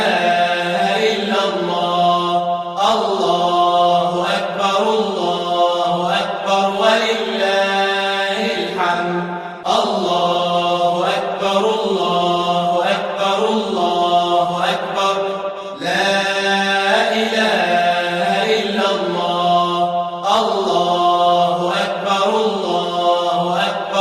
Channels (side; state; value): both; identical; correlation 1.00